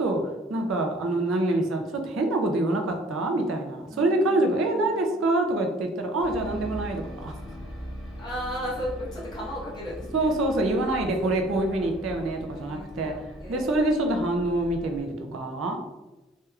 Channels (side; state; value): both; normal; correlation 0.53